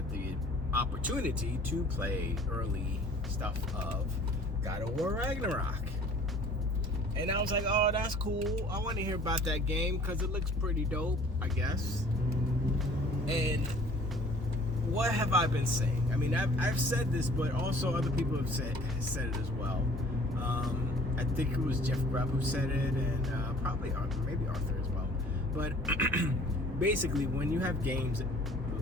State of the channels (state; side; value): normal; both; correlation 0.52